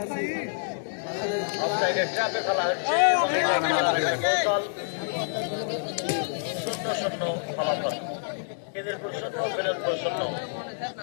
অফসাইডের ট্র্যাপে ফেলা হচ্ছে কৌশল 0-0 ফলাফল খিদিরপুর 0 বিনোদপুর 0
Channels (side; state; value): right; silent; digital silence